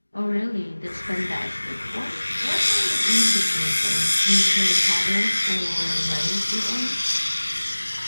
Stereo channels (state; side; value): inverted; both; correlation -1.00